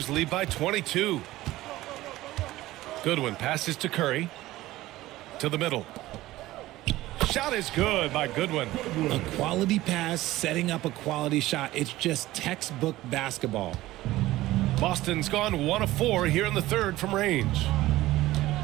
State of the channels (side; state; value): left; quieter; 16.8 dB